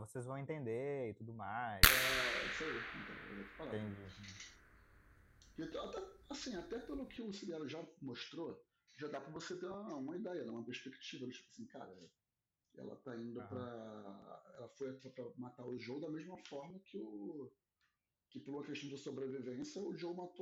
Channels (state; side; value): identical; both; correlation 1.00